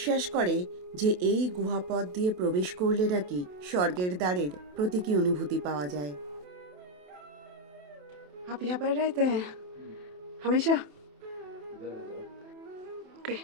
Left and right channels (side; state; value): left; late; 27 ms